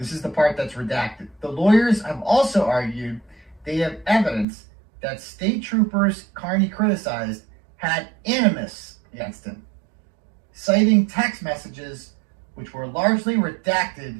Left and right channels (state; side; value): drops out; left; at 4.5 s